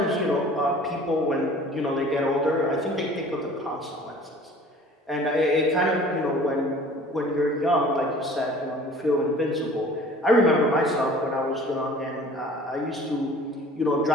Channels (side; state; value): both; normal; correlation 0.48